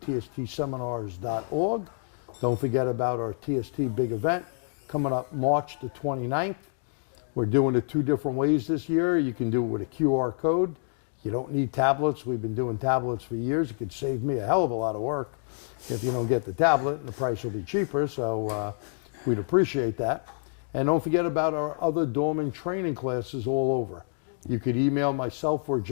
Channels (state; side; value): silent; right; 57 dB below the other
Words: Don't forget about our TST big event coming up March the 29th. We're doing it 2 different ways this year. You can do it with a QR code. You don't need tablets. We've been doing tablets for years. It could save me a hell of a lot of work if you don't get the tablet, and the price will be cheaper, so we'd appreciate that. And don't forget about our other Dorman training classes all over. You could email myself or